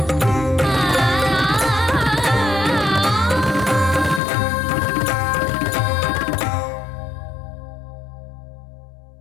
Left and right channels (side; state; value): right; drops out; at 4.2 s